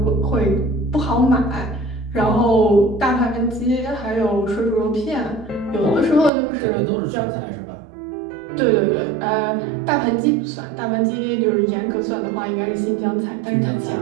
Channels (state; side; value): drops out; left; at 6.3 s